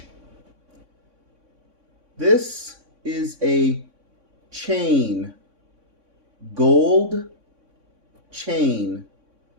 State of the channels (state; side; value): late; left; 3.6 ms